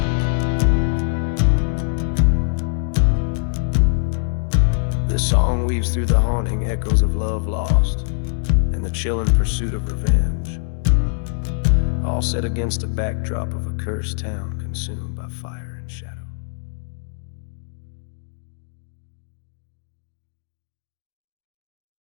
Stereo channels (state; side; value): silent; right; digital silence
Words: This song weaves through the haunting echoes of love lost and the chilling pursuit of revenge, all set against a backdrop of a cursed town consumed by fire and shadow.